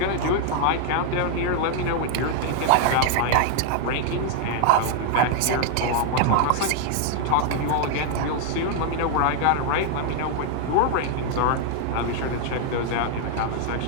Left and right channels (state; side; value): different; both; correlation 0.00